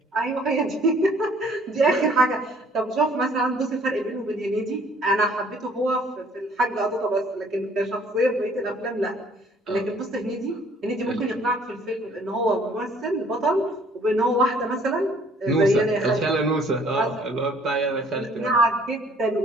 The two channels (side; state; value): both; normal; correlation 0.58